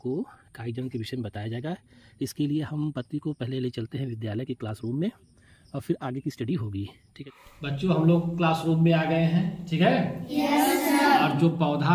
कायिक जनन के विषय में बताया जाएगा। इसके लिए हम पत्ती को पहले ले चलते हैं विद्यालय के क्लासरूम में और फिर आगे की स्टडी होगी। ठीक है बच्चों, हम लोग क्लासरूम में आ गए हैं। ठीक है यस सर। और जो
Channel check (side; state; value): both; identical; correlation 1.00